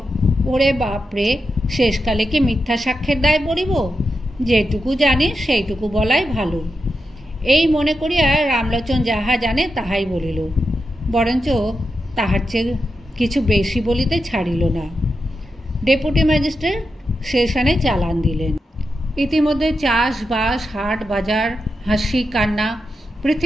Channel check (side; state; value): both; normal; correlation 0.88